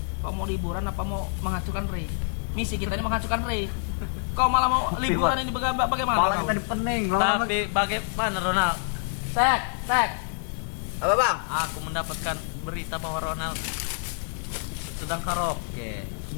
Kau mau liburan apa mau menghancurkan Ray? Misi kita ini menghancurkan Ray. Kau malah mau liburan ini bagaimana? Malah kau? kita dipening, lama Tapi bagaimana Ronald? Tek. Apa, Bang? Aku mendapatkan berita bahwa Ronald sedang karaoke.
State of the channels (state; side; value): silent; right; 60 dB below the other